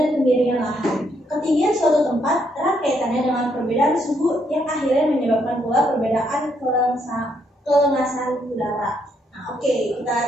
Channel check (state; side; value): normal; both; correlation 0.74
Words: kemiringan lahan. Ketinggian suatu tempat erat kaitannya dengan perbedaan suhu yang akhirnya menyebabkan pula perbedaan kelengasan udara. Nah, oke, kita